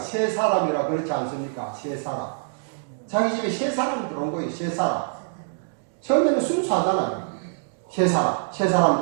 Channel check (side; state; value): left; silent; digital silence